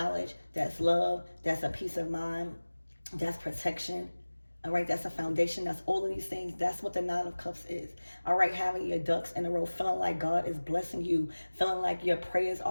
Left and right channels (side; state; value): both; inverted; correlation -1.00